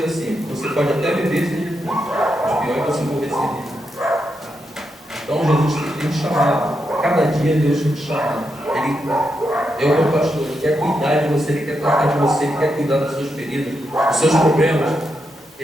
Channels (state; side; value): normal; both; correlation 0.84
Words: assim: você pode até viver sem Jesus, mas pior é você morrer sem Ele. Então Jesus tem te chamado. Cada dia Deus tem te chamado. Ele é o meu pastor, Ele quer cuidar de você, Ele quer tratar de você, Ele quer cuidar das suas feridas, dos seus problemas.